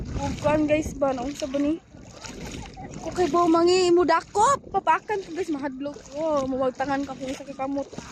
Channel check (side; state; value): both; identical; correlation 1.00